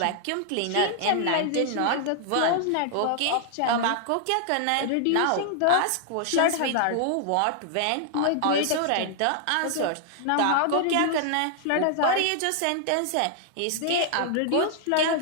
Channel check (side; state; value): both; different; correlation 0.00